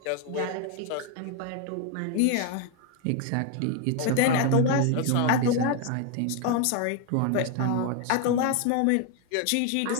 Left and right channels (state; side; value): different; both; correlation 0.01